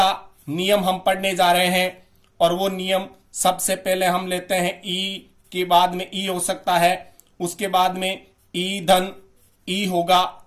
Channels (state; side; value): identical; both; correlation 1.00